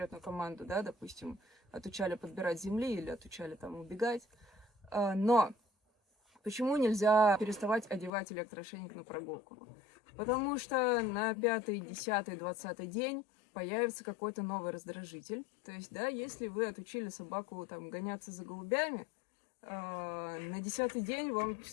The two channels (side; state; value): right; drops out; at 8.1 s